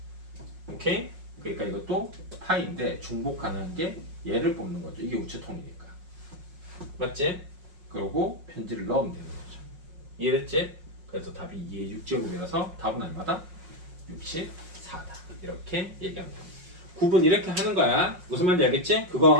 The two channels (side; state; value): left; late; 5.5 ms